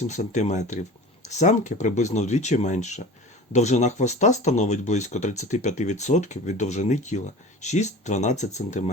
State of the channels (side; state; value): both; normal; correlation 0.38